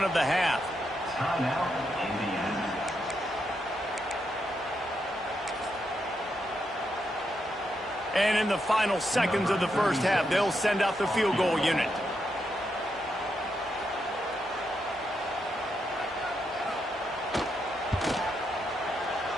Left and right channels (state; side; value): normal; both; correlation 0.82